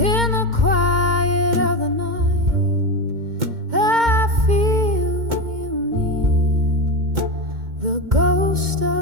the quiet of the night, I feel you near, the ghost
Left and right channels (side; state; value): left; late; 2.1 ms